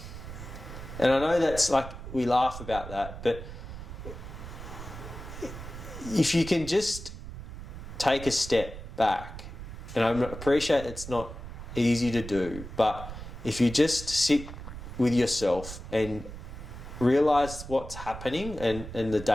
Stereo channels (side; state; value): right; noise; rumble, 11 dB below the sound